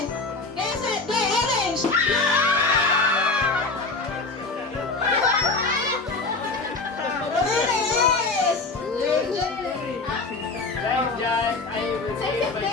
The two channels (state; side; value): quieter; right; 3.7 dB